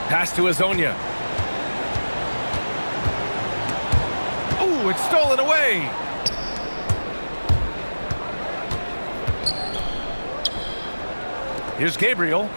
Pass to Azonia. Oh, it's stolen away. Here's Gabriel.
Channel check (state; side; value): inverted; both; correlation -1.00